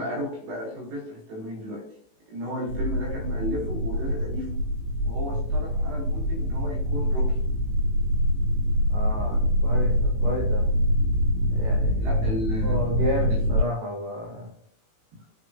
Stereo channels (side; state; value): left; late; 18 ms